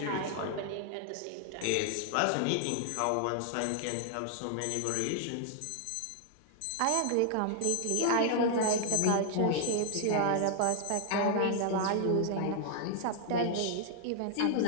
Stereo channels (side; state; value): both; different; correlation 0.00